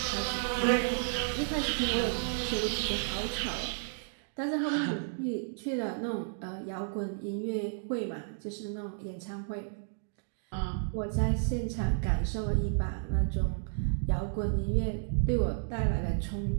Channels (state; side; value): silent; left; digital silence